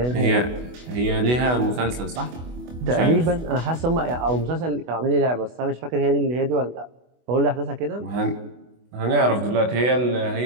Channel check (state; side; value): late; left; 24 ms